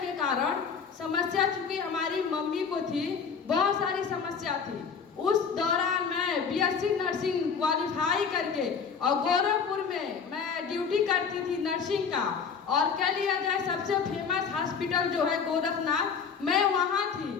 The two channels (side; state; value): right; quieter; 6.1 dB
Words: कारण। समस्या चूँकि हमारी मम्मी को थी, बहुत सारी समस्या थी। उस दौरान मैं बीएससी नर्सिंग क्वालिफाई करके और गोरखपुर में मैं ड्यूटी करती थी नर्सिंग का। और कह लिया जाए सबसे फेमस हॉस्पिटल जो है गोरखनाथ, मैं वहाँ थी।